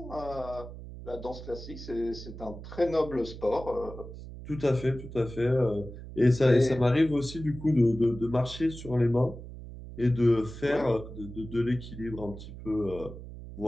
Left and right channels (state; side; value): noise; right; hum, 12 dB below the sound